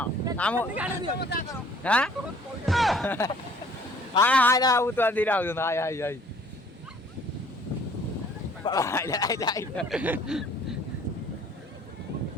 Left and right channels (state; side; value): normal; both; correlation 0.56